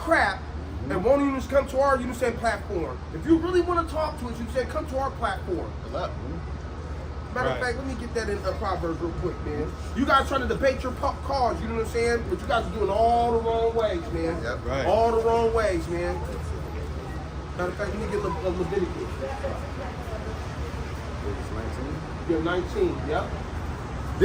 and won't even just come to our, saying platform. If you really want to talk to us, you say come to our platform. Matter of fact, let me get that in Proverbs real quick, man. You guys trying to debate your cause, you know what I'm saying? But you guys are doing all the wrong ways, man. Yep. Right. All the wrong ways, man. Matter of fact, let me get Leviticus. Yeah, 19, yep.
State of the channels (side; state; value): both; identical; correlation 1.00